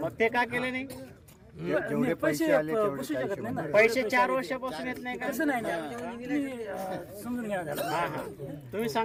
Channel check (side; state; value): both; identical; correlation 1.00